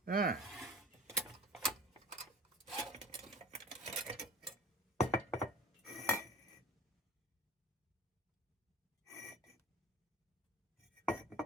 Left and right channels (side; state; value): both; normal; correlation 0.39